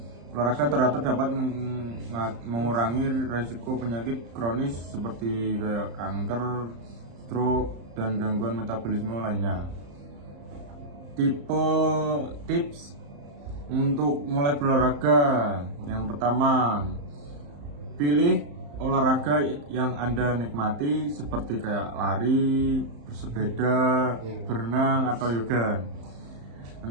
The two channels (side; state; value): left; late; 35 ms